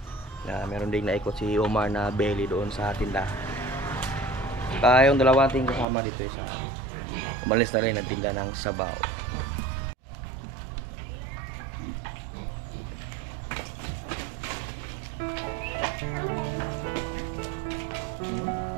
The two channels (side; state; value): left; drops out; at 5.9 s